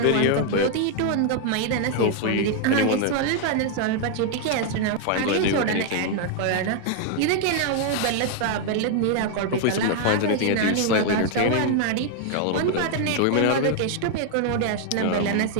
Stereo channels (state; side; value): different; both; correlation 0.00